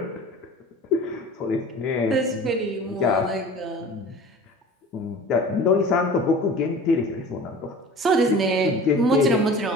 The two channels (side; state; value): both; normal; correlation 0.40